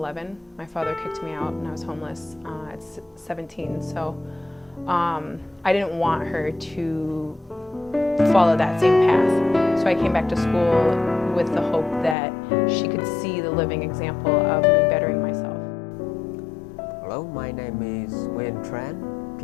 My father kicked me out and I was homeless at 17. So I didn't want her to follow that same path. So I came back to school with the hope that she could see the living example of me bettering myself. Hello, my name is Nguyen Tran.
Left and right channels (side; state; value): right; drops out; at 12.2 s